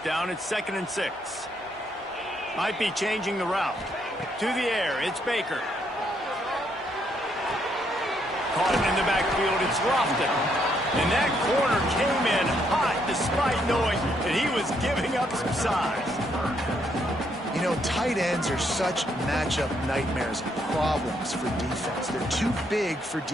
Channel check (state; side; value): normal; both; correlation 0.73